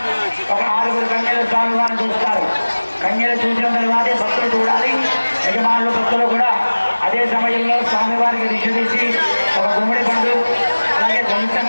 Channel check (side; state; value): both; inverted; correlation -1.00